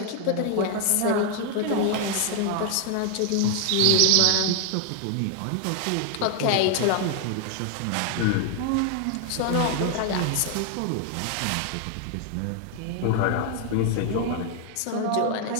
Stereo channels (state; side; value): different; both; correlation 0.00